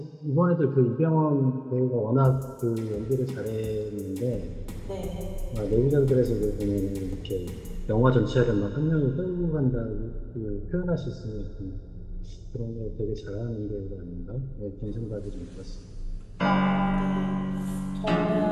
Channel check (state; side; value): identical; both; correlation 1.00